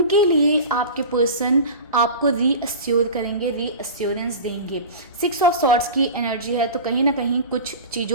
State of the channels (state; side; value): inverted; both; correlation -0.32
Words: लिए आपके पर्सन आपको रीअश्योर करेंगे, रीअश्योरेंस देंगे। सिक्स ऑफ सॉर्ड्स की एनर्जी है, तो कहीं ना कहीं कुछ